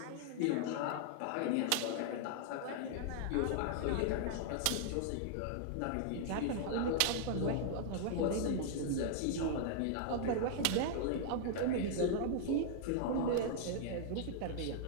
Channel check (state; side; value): different; both; correlation -0.01